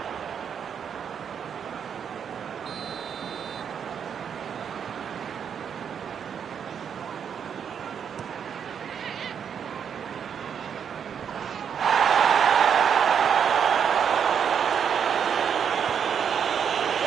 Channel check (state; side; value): quieter; left; 7.6 dB